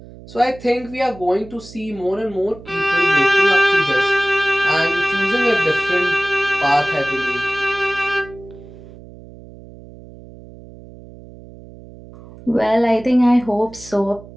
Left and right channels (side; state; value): right; noise; hum, 18 dB below the sound